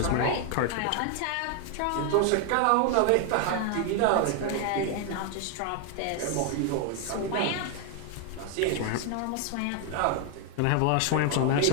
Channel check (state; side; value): different; both; correlation 0.01